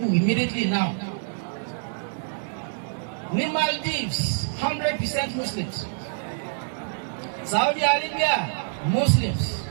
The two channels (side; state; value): left; silent; digital silence